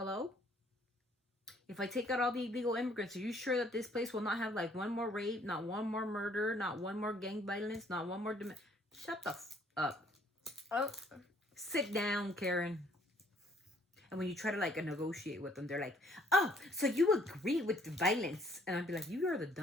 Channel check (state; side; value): normal; both; correlation 0.62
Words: If I take out all the illegal immigrants, are you sure that this place will not have like one more rape, not one more murder, not one more gang violence, not one more... Shut the up. Oh. Sit down, Karen. And when you try to like negotiate with them, they're like, oh, so you agree with the violence. And I'd be like, you are the